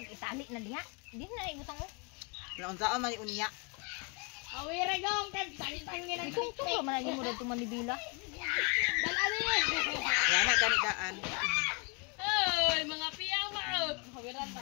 itali na diha. Di na ibutang oh. Naunsaon man unya. Awire gong kan tangin ang Kung tulo man lagi mo dito manibila. dalali. Wala na gani daan. Oy, mga piyama.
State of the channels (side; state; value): right; quieter; 33.0 dB